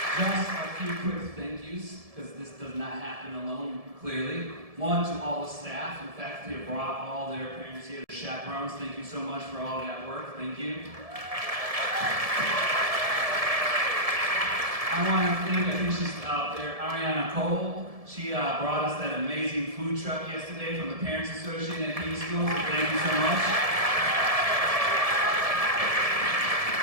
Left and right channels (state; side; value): late; left; 1.7 ms